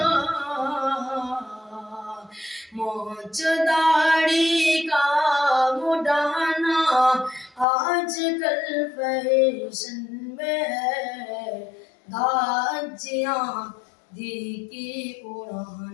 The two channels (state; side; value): drops out; right; at 7.7 s